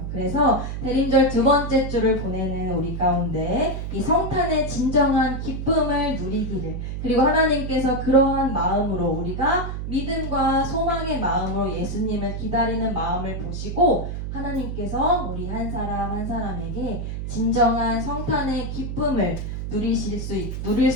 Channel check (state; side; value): noise; right; hum, 5 dB below the sound